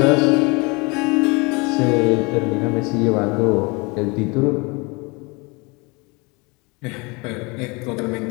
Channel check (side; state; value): right; quieter; 27.8 dB